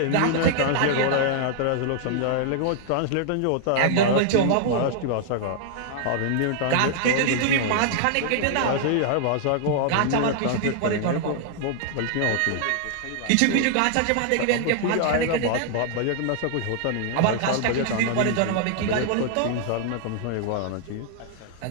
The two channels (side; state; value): both; different; correlation 0.00